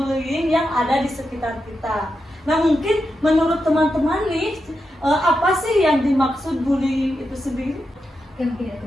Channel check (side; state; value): both; normal; correlation 0.87